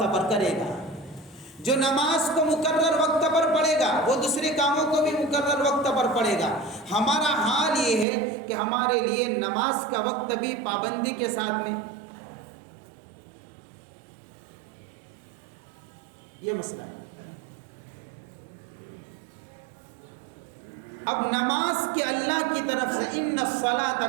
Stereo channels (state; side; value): drops out; left; at 8.1 s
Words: پر کرے گا۔ جو نماز کو مقرر وقت پر پڑھے گا وہ دوسرے کاموں کو بھی مقرر وقت پر پڑھے گا۔ ہمارا حال یہ ہے کہ ہمارے لیے نماز کا وقت بھی پابندی کے ساتھ میں، یہ مسئلہ ہے۔ اب نماز کے اللہ کی طرف سے ان الصلاۃ